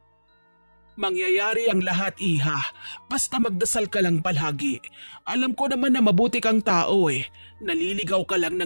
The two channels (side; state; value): both; inverted; correlation -1.00